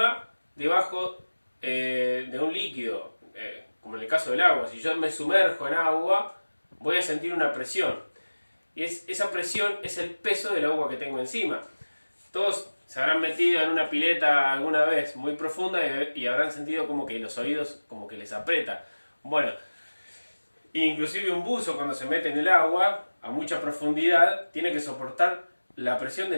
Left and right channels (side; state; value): both; inverted; correlation -1.00